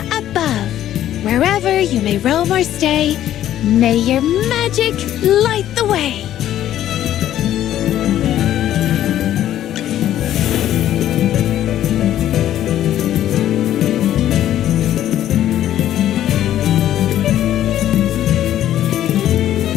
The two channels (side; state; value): right; quieter; 12.1 dB